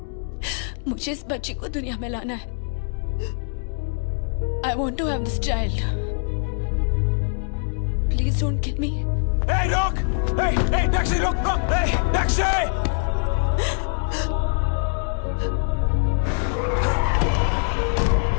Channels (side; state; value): right; silent; digital silence